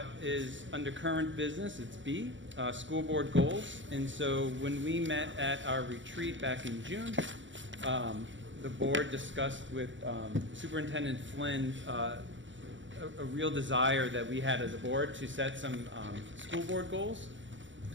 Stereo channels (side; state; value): left; late; 0.55 ms